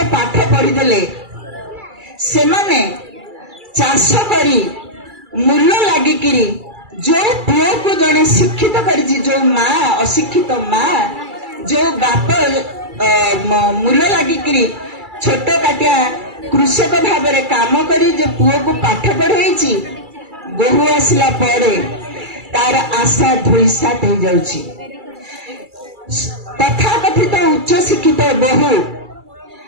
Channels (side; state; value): left; late; 2.3 ms